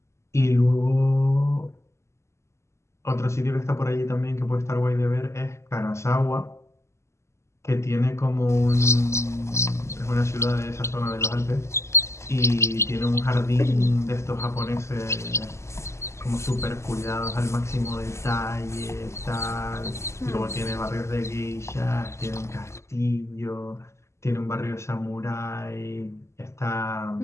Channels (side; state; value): right; late; 0.13 ms